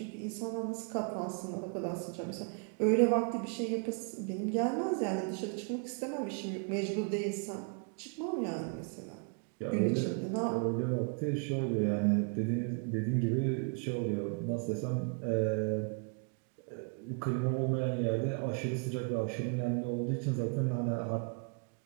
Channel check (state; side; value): quieter; left; 37.4 dB